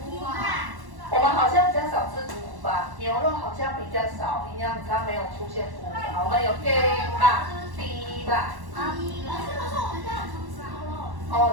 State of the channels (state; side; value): late; left; 1.1 ms